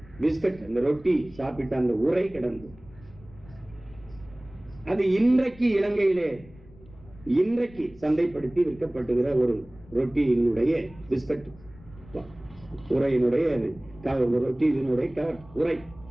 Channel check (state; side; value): noise; left; rumble, 22 dB below the sound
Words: பிஸ்கட், அந்த ரொட்டி சாப்பிட்ட அந்த உரை கிடந்து, அது இன்றைக்கு இலங்கையிலே இன்றைக்கு சந்தைப்படுத்தி விற்கப்படுகிற ஒரு ரொட்டியினுடைய பிஸ்கட் உரையினுடைய ரொட்டி இதனுடைய உரை.